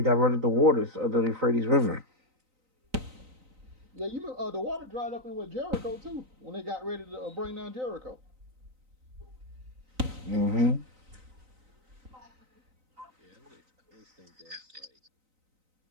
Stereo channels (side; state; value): left; late; 3.9 ms